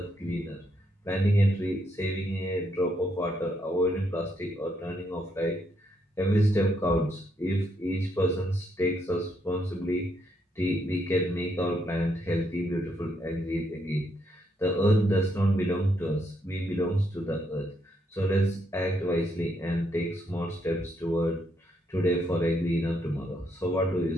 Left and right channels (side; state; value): both; normal; correlation 0.76